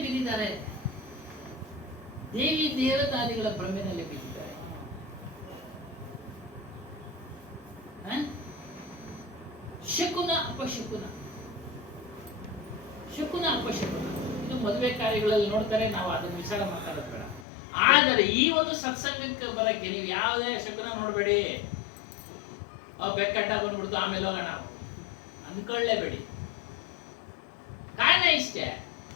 ಬಿದ್ದಿದ್ದಾರೆ. ದೇವಿ ದೇವತಾದಿಗಳ ಭ್ರಮೆನಲ್ಲಿ ಬಿದ್ದಿದ್ದಾರೆ. ಶಕುನ ಅಪಶಕುನ, ಶಕುನ ಅಪಶಕುನ ಇದು ಮದುವೆ ಕಾರ್ಯಗಳಲ್ಲಿ ನೋಡ್ತಾರೆ. ನಾವು ಅದನ್ನು ವಿಚಾರ ಮಾತಾಡೋದು ಬೇಡ. ಆದರೆ ಈ ಒಂದು ಸತ್ಸಂಗಕ್ಕೆ ಬರಕ್ಕೆ ನೀವು ಯಾವುದೇ ಶಕುನ ನೋಡಬೇಡಿ. ಬೆಕ್ಕಟ್ಟ ಬಂದ್ಬಿಡ್ತು ಆಮೇಲೆ ಹೋಗೋಣ ಅಂದ್ಕೊಳ್ಳೇಬೇಡಿ. ಕಾರಣ ಇಷ್ಟೇ,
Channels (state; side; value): drops out; right; at 17.4 s